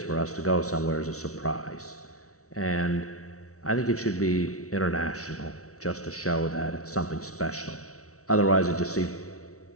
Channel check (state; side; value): late; right; 0.64 ms